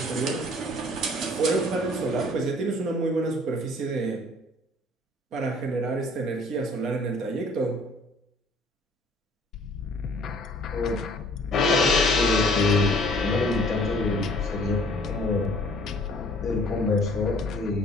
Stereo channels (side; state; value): both; normal; correlation 0.54